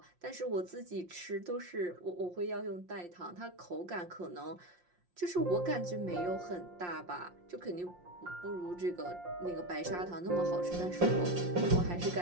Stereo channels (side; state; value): left; late; 5.6 ms